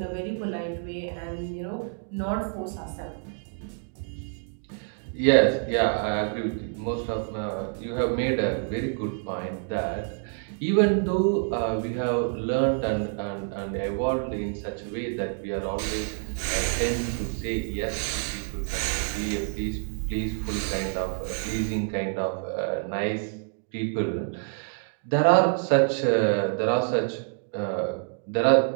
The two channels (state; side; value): silent; left; 60 dB below the other